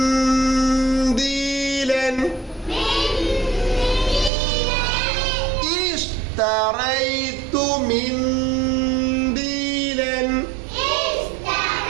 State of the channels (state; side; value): drops out; left; at 4.3 s